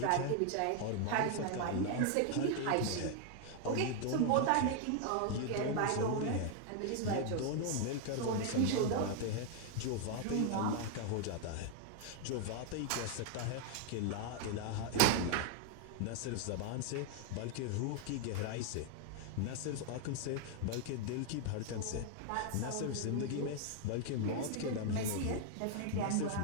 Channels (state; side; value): different; both; correlation 0.00